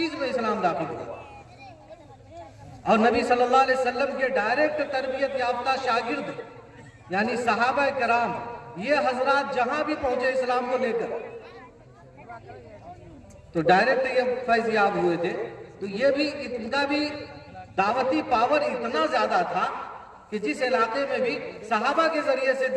में इस्लाम दाखिल हुआ। और नबी सल्लल्लाहु अलैहि वसल्लम के डायरेक्ट तरबियत याफ्ता शागिर्द यानी सहाबा कराम, ये हजरात जहां भी पहुंचे इस्लाम को लेकर, तो डायरेक्ट ये फैज़याब हुए थे। तो ये भी, इनका भी दावती पावर इतना ज्यादा था कि जिस इलाके में भी सहाबा के जरिए से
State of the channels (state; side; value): identical; both; correlation 1.00